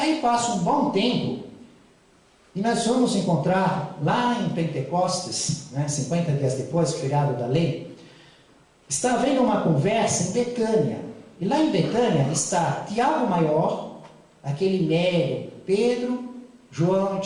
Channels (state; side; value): identical; both; correlation 1.00